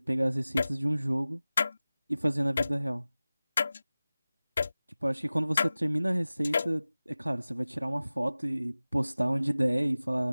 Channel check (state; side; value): inverted; both; correlation -0.97